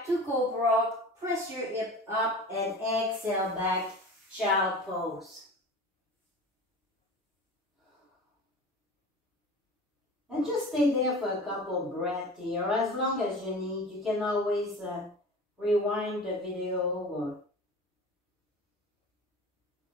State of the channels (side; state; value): both; normal; correlation 0.36